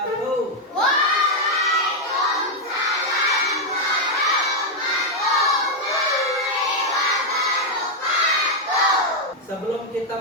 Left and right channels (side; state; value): both; normal; correlation 0.01